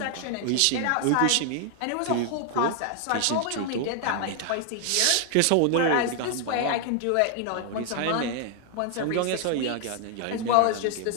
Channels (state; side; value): different; both; correlation 0.00